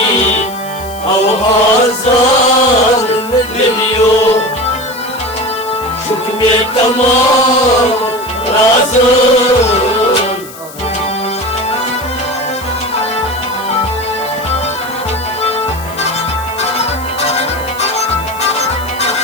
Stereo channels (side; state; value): left; noise; hiss, 17 dB below the sound